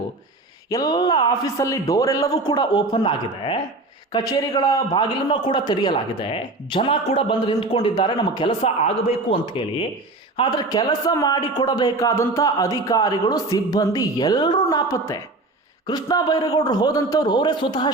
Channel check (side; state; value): left; quieter; 3.0 dB